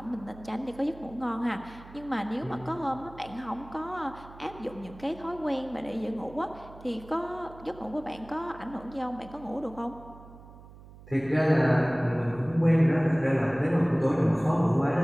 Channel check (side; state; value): right; noise; hum, 19 dB below the sound